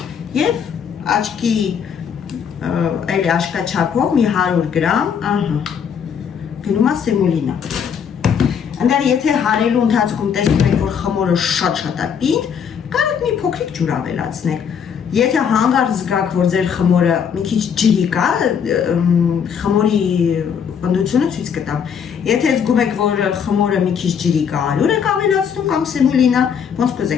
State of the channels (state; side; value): quieter; right; 7.4 dB